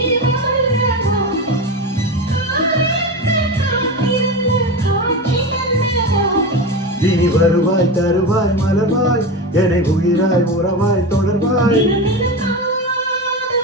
இனி வருவாய் தருவாய் மலர்வாய் என்னை உயிராய் உறவாய் தொடர்வாய்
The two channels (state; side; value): normal; both; correlation 0.22